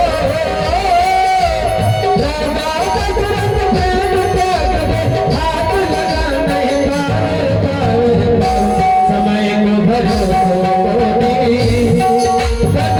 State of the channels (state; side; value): identical; both; correlation 1.00